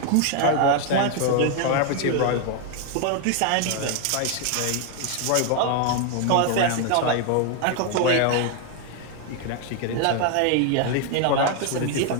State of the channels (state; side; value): different; both; correlation 0.01